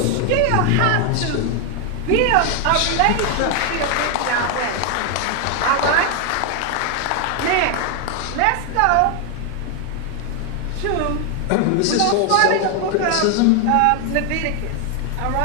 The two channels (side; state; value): both; different; correlation 0.01